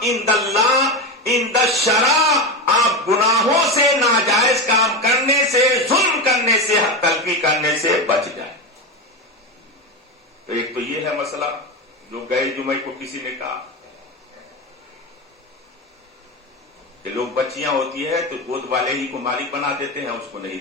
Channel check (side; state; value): both; normal; correlation 0.17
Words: عند اللہ عند الشرع آپ گناہوں سے، ناجائز کام کرنے سے، ظلم کرنے سے، حق تلفی کرنے سے بچ جائیں. تو ایک تو یہ ہے مسئلہ جو گئے جمعے کو کسی نے کہا کہ لوگ بچیاں ہوتی ہے تو گود والے ہی کو مالک بنا دیتے ہیں، اس کو